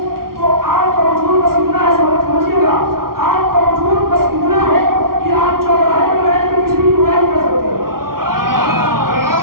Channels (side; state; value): left; late; 0.93 ms